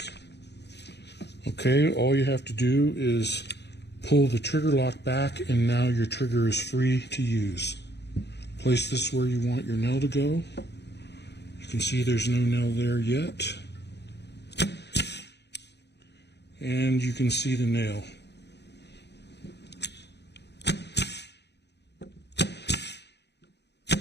Okay, all you have to do is pull the trigger lock back, and now your trigger is free to use. Place this where you want your nail to go. You can see there's no nail there yet. And you can see the nail.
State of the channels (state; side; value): late; right; 0.50 ms